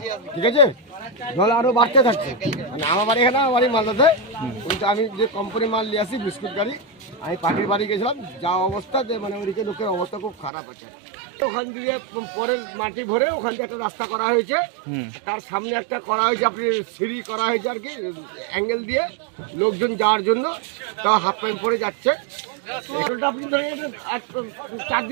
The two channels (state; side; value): drops out; left; at 10.5 s